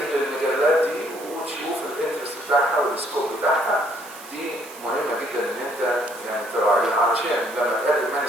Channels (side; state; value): right; noise; hiss, 17 dB below the sound